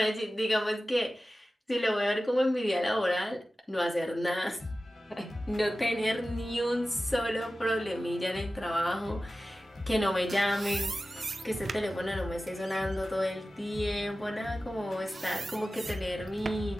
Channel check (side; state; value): both; normal; correlation 0.95